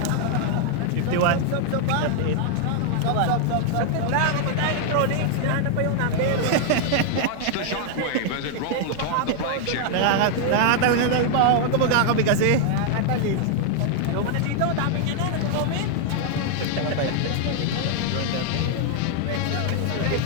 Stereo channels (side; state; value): both; different; correlation 0.00